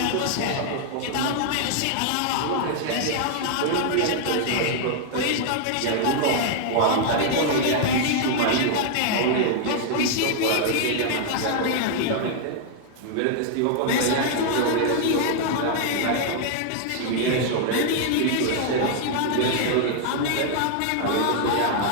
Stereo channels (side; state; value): both; different; correlation 0.00